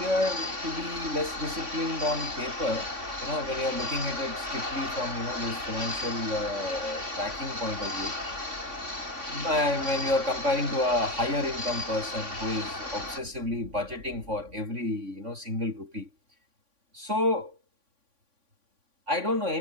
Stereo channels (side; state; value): left; late; 3.5 ms